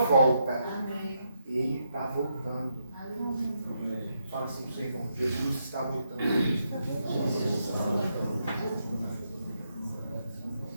Ele está voltando. Fala assim para o seu irmão, Jesus está voltando.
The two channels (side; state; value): both; inverted; correlation -0.80